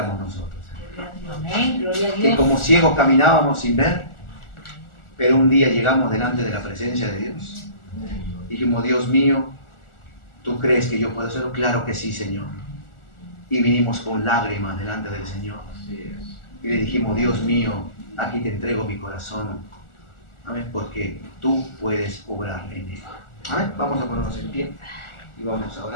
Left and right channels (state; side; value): late; right; 1.4 ms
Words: nosotros. Amén, gloria a Que Dios. como ciegos caminábamos sin ver, pero un día llegamos delante de la presencia de Dios. Dijimos, Dios mío, ¿tú crees que yo puedo hacerlo? Claro que sí, Señor. Y vinimos con lágrimas delante del Señor. Y le dijimos, Dios mío, aquí te entrego mi corazón. Amén, porque tú puedes obrar en él. Amén. Vamos a ponernos en pie y vamos a